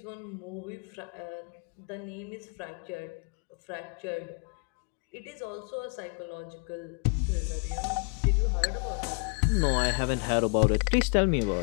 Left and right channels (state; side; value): quieter; right; 37.9 dB